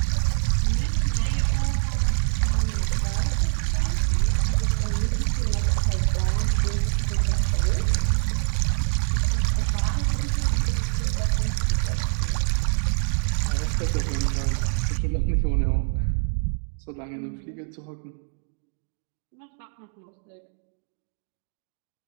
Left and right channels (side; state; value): left; silent; 62 dB below the other